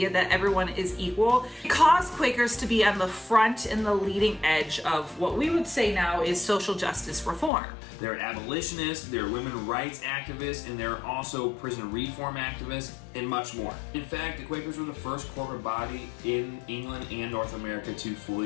that everyone is equal, it caused Quakers to be on the front and the leading edge of what we would say now is social justice reform. They're abolitionists, they're women rights activists, and they're also prison reform activists, and much more. In fact, the Quakers were the first corporate body in England and North America to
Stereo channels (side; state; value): right; drops out; at 7.5 s